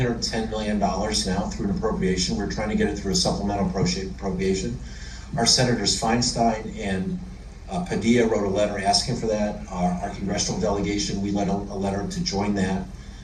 million now through an appropriation. We're trying to get it through a supplemental appropriation. Our Senators Feinstein and Padilla wrote a letter asking for that. Our congressional delegation, we led a letter to join that.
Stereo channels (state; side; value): identical; both; correlation 1.00